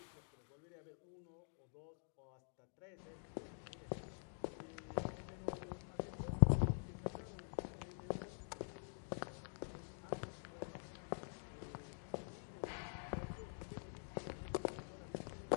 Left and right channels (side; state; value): right; silent; digital silence